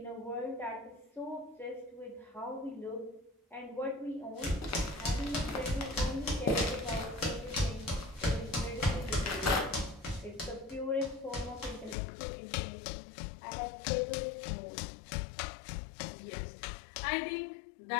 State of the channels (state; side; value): drops out; right; at 12.0 s